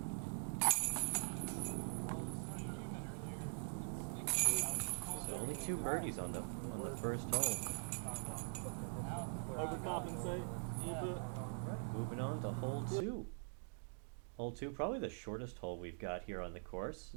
So only 2 birdies on the first hole. Overcompensate. Moving on to hole 2. Hole 2, probably the shortest hole we've got here on the course.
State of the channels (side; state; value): left; silent; digital silence